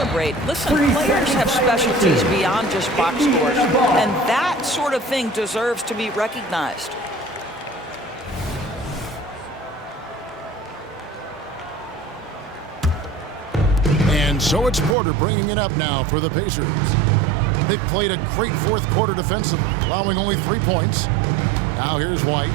Listen, players have specialties beyond just box scores, and that sort of thing deserves to be recognized. And so it's Porter bringing it up now for the Pacers. They've played a great 4th quarter defensively, allowing only 3 points. Now here's White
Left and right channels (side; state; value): left; drops out; at 15.0 s